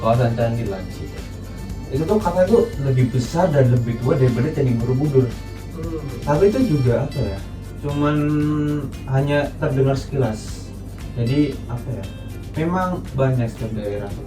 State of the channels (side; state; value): both; identical; correlation 1.00